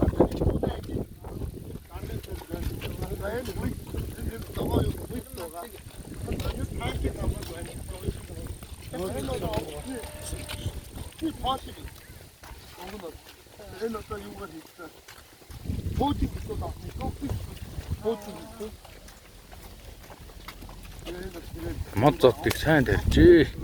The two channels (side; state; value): both; identical; correlation 1.00